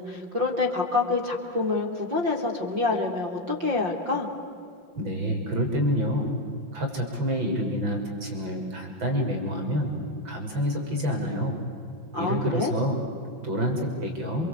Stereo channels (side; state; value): left; late; 6.0 ms